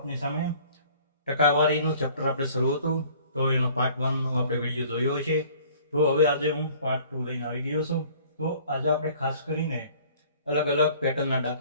સામે. ટકાવારીનું ચેપ્ટર આપણે શરૂ હતું તો એનો પાર્ટ 1 નો આપણે વિડીયો જોયો છે. તો હવે આજે હું પાર્ટ 2 લઈને આવી ગયો છું. તો આજે આપણે ખાસ કરીને અલગ અલગ પેટર્નના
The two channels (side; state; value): both; inverted; correlation -0.52